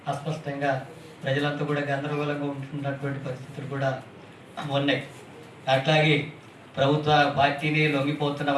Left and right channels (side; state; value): both; identical; correlation 1.00